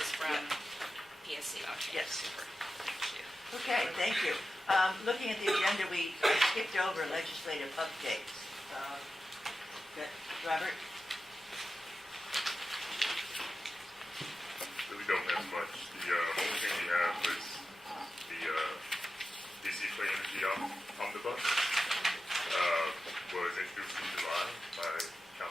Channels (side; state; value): both; normal; correlation 0.93